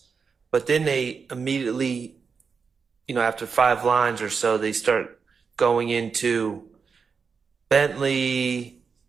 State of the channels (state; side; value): quieter; left; 5.6 dB